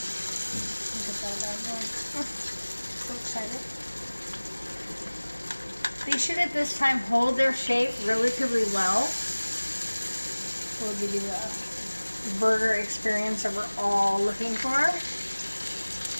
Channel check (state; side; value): inverted; both; correlation -1.00